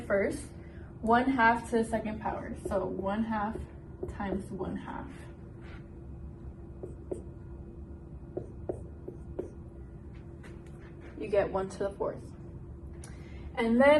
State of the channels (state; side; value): identical; both; correlation 1.00